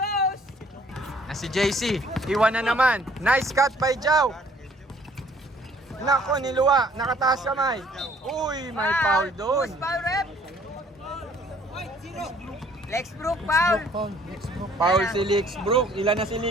Na si JC. Iwan na naman. Nice cut by Jao. Nako, niluwa. Nakataas kamay. Uy, may foul doon. Foul rep! Lexbrook, foul! Foul si Lixbrook. Ilan na si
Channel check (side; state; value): both; normal; correlation 0.59